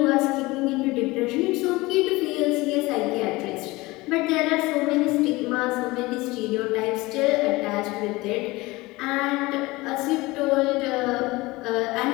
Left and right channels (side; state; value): right; quieter; 21.3 dB